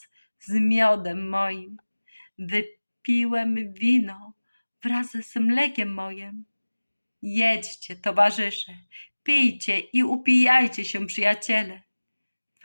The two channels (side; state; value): both; inverted; correlation -1.00